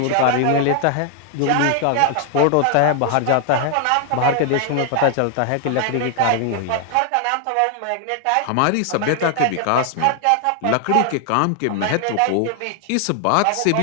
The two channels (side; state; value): both; different; correlation 0.00